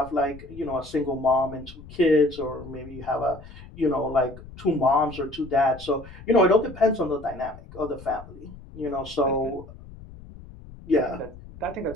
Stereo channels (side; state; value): left; noise; rumble, 17 dB below the sound